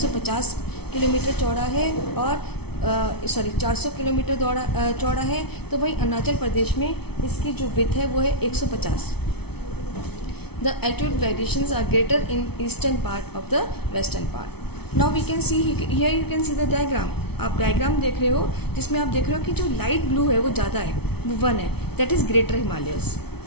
किलोमीटर चौड़ा है और 400 किलोमीटर चौड़ा है. तो वहीं अरुणाचल प्रदेश में इसकी जो विड्थ है वो है 150. The altitude variations are greater in eastern part of the western part. Now we can see here you can see the diagram. आप डायग्राम देख रहे हो जिसमें आप देख रहे हो कि जो लाइट ब्लू है वो ज़्यादा है, वो 1 है, that is greater Himalayas,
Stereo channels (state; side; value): late; right; 0.97 ms